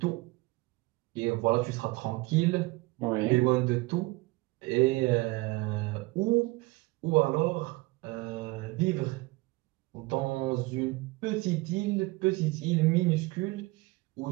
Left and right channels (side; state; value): left; quieter; 22.6 dB